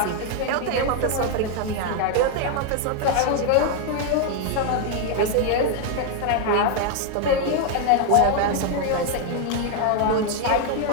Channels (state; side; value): different; both; correlation 0.00